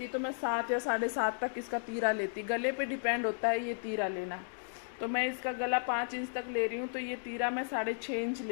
तो मैं 7 या 7.5 तक इसका तीरा लेती। गले पे डिपेंड होता है ये तीरा लेना। तो मैं इसका गला 5 इंच तक ले रही हूँ, तो ये तीरा मैं 6.5 इंच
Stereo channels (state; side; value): silent; right; digital silence